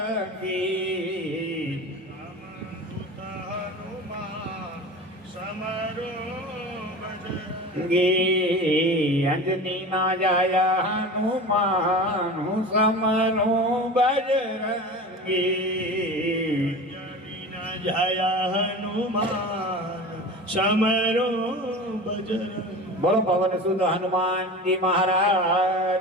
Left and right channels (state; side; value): normal; both; correlation 0.33